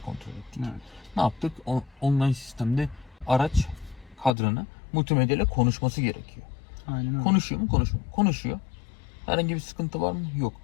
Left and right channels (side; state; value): right; drops out; at 4.4 s